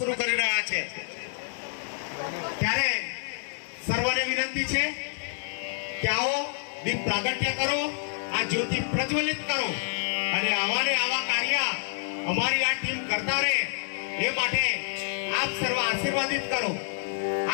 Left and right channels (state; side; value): silent; right; digital silence